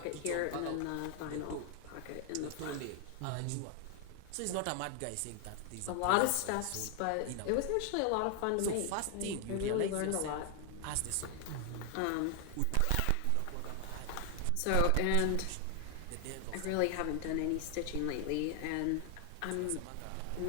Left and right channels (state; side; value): different; both; correlation 0.00